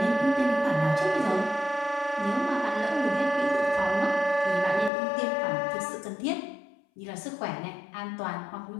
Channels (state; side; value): drops out; right; at 4.9 s